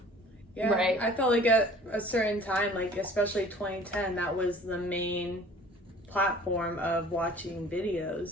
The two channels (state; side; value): normal; both; correlation 0.49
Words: Yeah, Right. I felt like at a certain time, like especially 2010, that was the main platform of watching